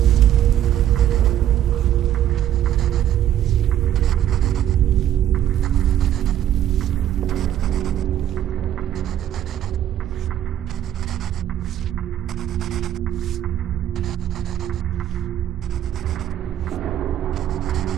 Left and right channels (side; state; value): left; quieter; 11.3 dB